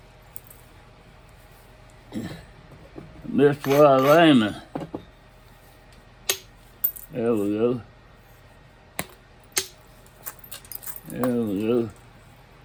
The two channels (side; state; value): both; identical; correlation 1.00